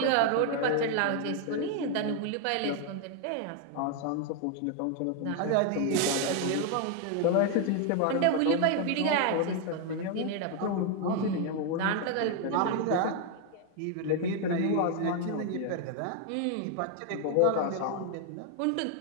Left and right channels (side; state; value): both; different; correlation 0.01